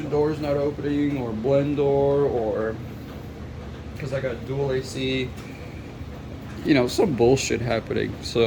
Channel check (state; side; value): identical; both; correlation 1.00